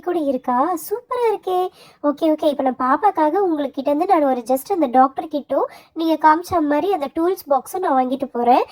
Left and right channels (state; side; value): identical; both; correlation 1.00